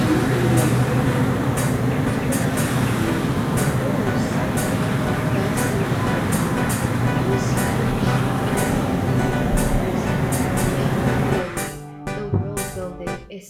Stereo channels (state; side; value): identical; both; correlation 1.00